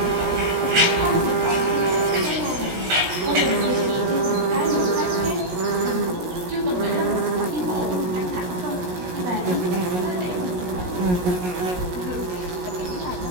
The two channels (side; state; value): left; late; 17 ms